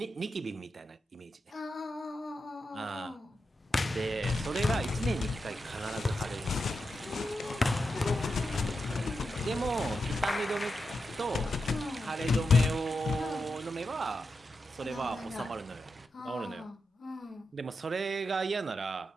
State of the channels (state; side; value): normal; both; correlation 0.87